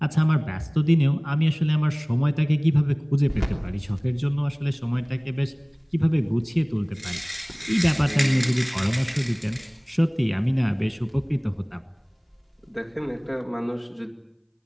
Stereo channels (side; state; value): both; identical; correlation 1.00